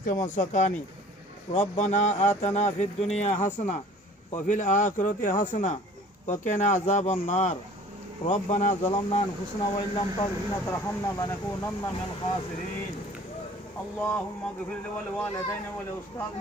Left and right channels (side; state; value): both; normal; correlation 0.48